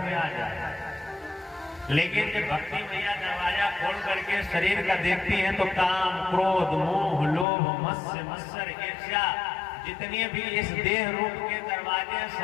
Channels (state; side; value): drops out; right; at 7.5 s